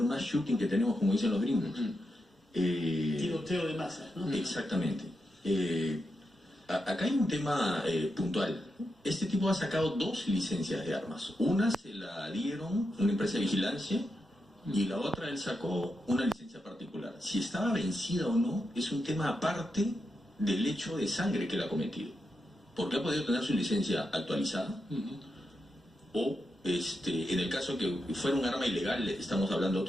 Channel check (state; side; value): normal; both; correlation 0.86